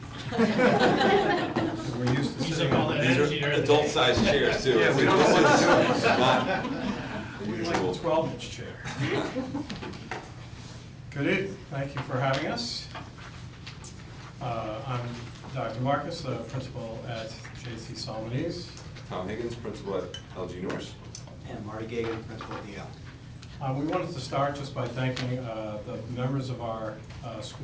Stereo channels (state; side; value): identical; both; correlation 1.00